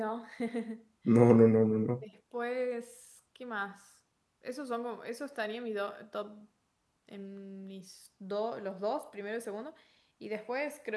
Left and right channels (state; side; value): identical; both; correlation 1.00